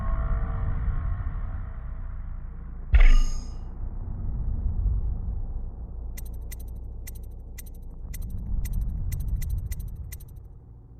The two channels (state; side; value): identical; both; correlation 1.00